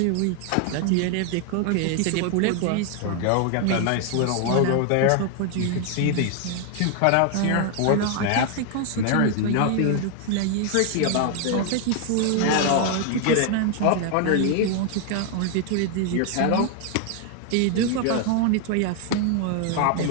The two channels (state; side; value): different; both; correlation 0.00